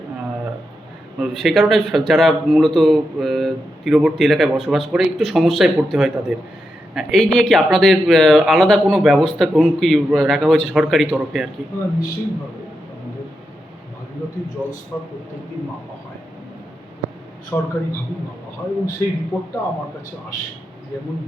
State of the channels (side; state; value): both; normal; correlation 0.86